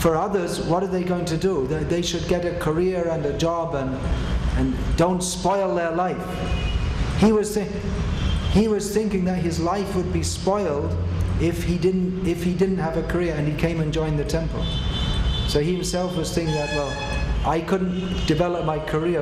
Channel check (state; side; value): identical; both; correlation 1.00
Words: others, what are they going to do? They should get a career and a job and don't spoil their life. He was thinking that his life would be spoiled if he didn't have a career and he came and joined the temple. So he himself was thinking that, well, I couldn't develop my